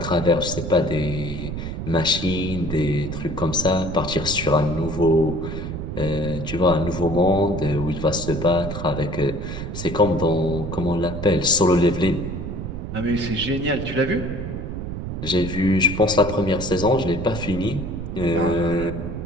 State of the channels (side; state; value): right; noise; rumble, 6 dB below the sound